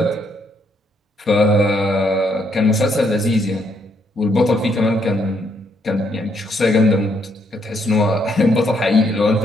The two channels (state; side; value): normal; both; correlation 0.73